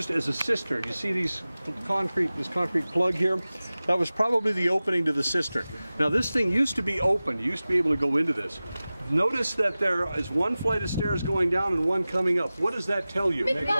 as a cistern. You see this concrete plug here? That was probably the opening to the cistern. Now this thing used to be open. You used to be able to go into this. Notice that there is one flight of stairs going down and one coming up. What does that tell you?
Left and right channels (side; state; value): both; inverted; correlation -0.97